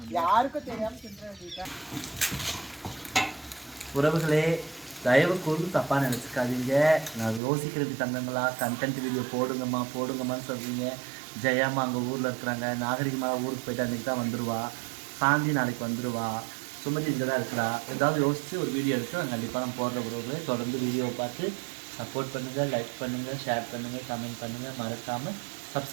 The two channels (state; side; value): drops out; left; at 7.4 s